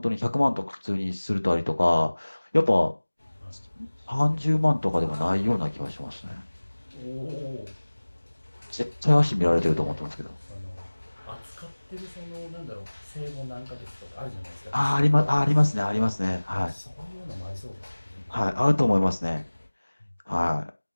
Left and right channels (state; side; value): inverted; both; correlation -1.00